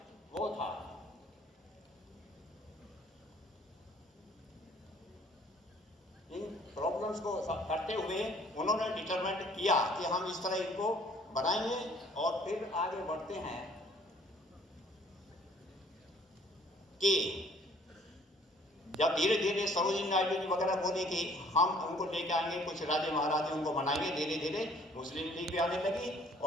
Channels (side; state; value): both; normal; correlation 0.57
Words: वो था इन प्रॉब्लम्स को करते हुए उन्होंने डिटरमाइन किया कि हम इस तरह इनको बनाएंगे और फिर आगे बढ़ते हैं कि जब धीरे धीरे सरोजिनी नायडू जी वगैरह बोले कि हम उनको लेके आएंगे, कुछ राजे महाराजे उनको बनाएंगे, धीरे धीरे मुस्लिम लीग भी आने लगी